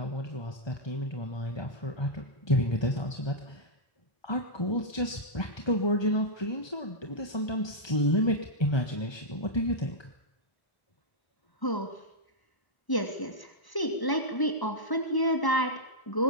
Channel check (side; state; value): right; late; 1.0 ms